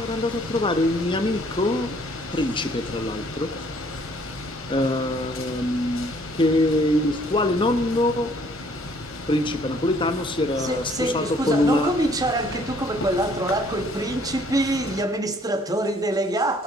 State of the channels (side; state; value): both; normal; correlation 0.61